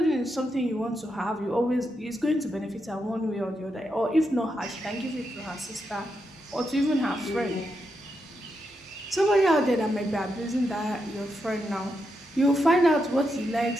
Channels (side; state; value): both; normal; correlation 0.84